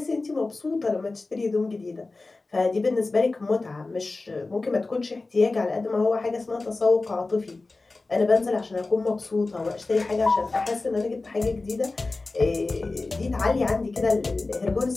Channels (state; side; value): quieter; right; 3.4 dB